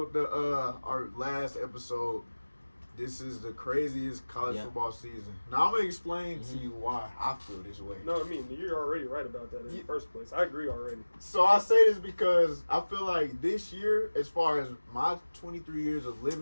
our last episode, "This is the craziest college football season." Now I'm gonna explain to you why I feel this way. No, I mean you're already right about that in the first place. I agree already. So I say this because I feel like this year, as far as my 23 years of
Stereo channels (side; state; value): both; inverted; correlation -1.00